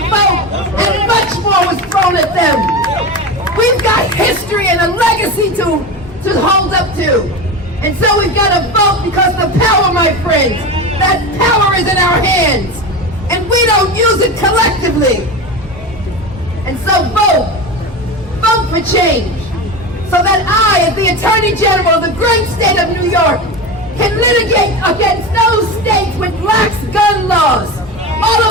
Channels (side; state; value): both; normal; correlation 0.24